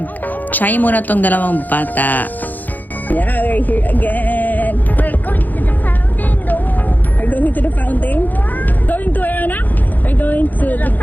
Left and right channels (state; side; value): late; right; 0.084 ms